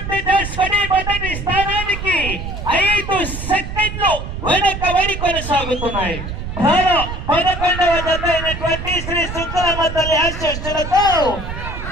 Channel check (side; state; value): right; noise; rumble, 7 dB below the sound